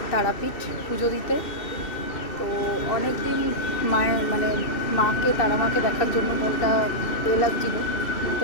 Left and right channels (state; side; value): late; right; 2.7 ms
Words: তারাপীঠ পুজো দিতে। তো অনেক দিন মায়ের তারা মাকে দেখার জন্য মনটা লাগছিল। তো